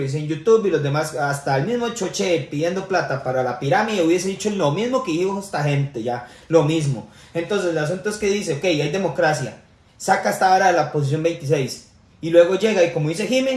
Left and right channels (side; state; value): both; identical; correlation 1.00